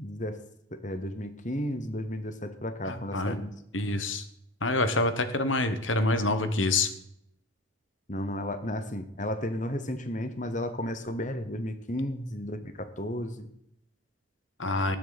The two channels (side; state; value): both; normal; correlation 0.35